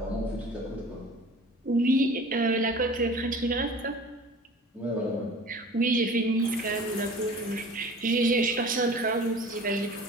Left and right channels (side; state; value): both; normal; correlation 0.42